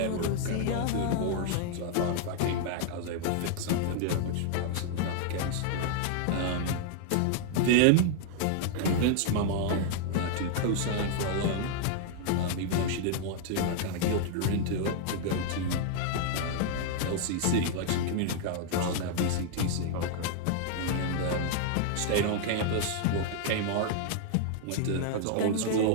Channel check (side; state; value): both; different; correlation 0.00